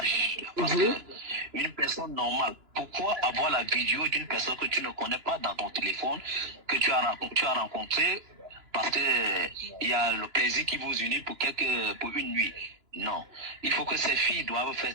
Parce que une personne normale, pourquoi avoir la vidéo d'une personne que tu ne connais pas dans ton téléphone, que tu as rencontré, parce que il y a le plaisir qui vous unit pour une nuit? Non. Il faut que ces filles doivent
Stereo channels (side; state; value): left; late; 2.9 ms